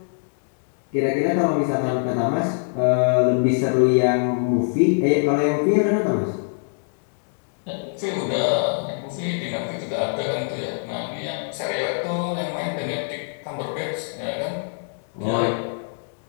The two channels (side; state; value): right; silent; digital silence